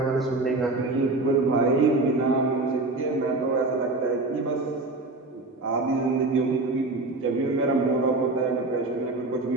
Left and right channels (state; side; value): quieter; left; 3.2 dB